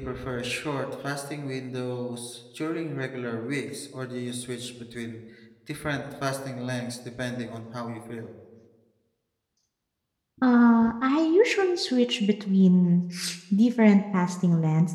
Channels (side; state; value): both; identical; correlation 1.00